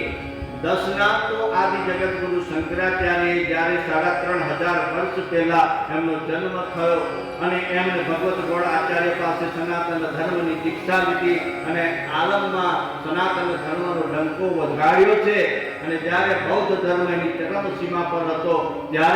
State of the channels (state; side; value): identical; both; correlation 1.00